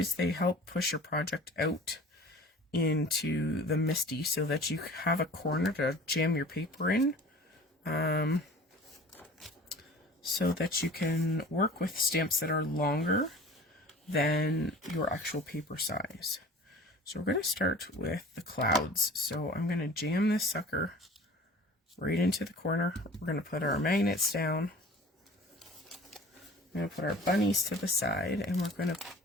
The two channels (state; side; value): normal; both; correlation 0.43